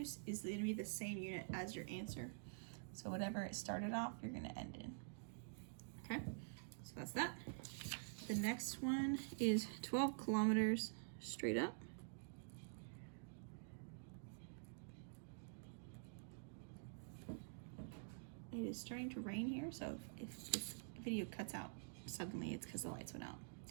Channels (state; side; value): silent; left; digital silence